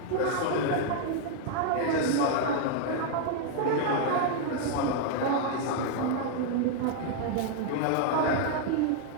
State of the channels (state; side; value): different; both; correlation 0.00